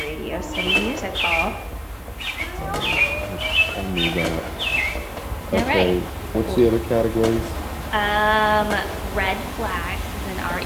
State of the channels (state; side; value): identical; both; correlation 1.00